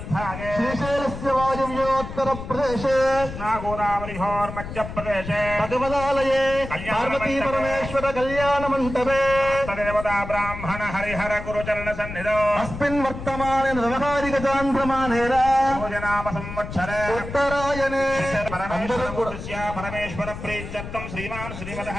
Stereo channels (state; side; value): noise; left; rumble, 9 dB below the sound